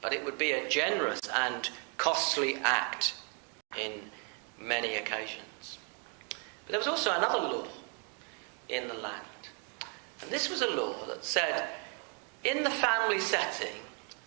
But it would be a generous and costly act in many occasions. But there was also another law in the land. And this was a law that said, in the family setting,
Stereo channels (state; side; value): quieter; left; 38.5 dB